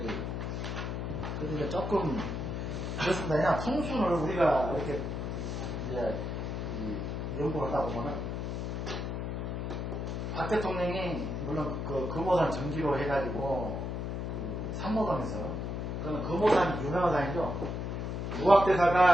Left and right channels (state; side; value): noise; left; hum, 3 dB below the sound